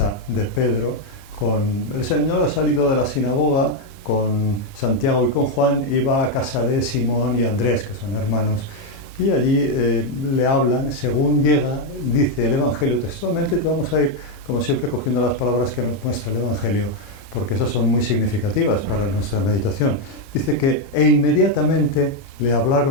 de Pedro. El Señor ha salido de la sinagoga con Santiago y con Juan, y va a casa de Simón y Andrés, que son hermanos, y allí le hablan. Según llega, dice el Evangelio textualmente, te vamos a ir, como siempre, cogiendo las palabras que nos muestra el Evangelio, porque esas son muy significativas para nuestra meditación. Dice que, e inmediatamente le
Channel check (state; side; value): late; right; 30 ms